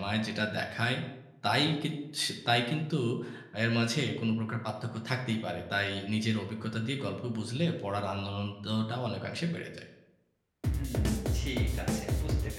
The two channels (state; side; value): identical; both; correlation 1.00